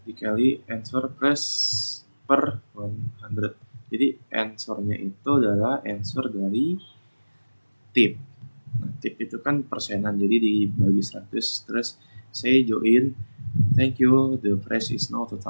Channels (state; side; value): inverted; both; correlation -1.00